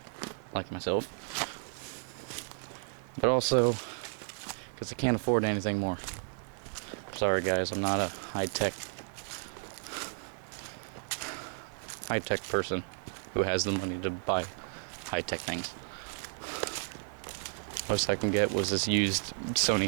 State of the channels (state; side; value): silent; left; digital silence